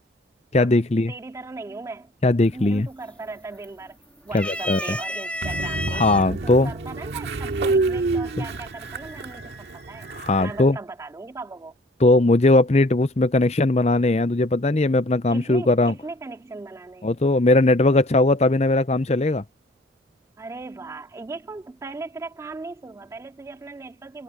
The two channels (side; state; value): both; normal; correlation 0.51